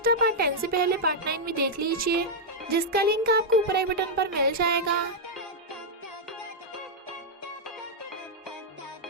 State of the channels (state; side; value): normal; both; correlation -0.04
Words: आप पार्ट 10 से पहले पार्ट 9 में देख लीजिए, जिसका लिंक आपको ऊपर आई बटन पर मिल जाएगा।